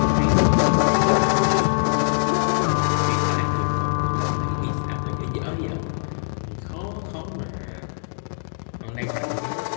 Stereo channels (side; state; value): right; silent; digital silence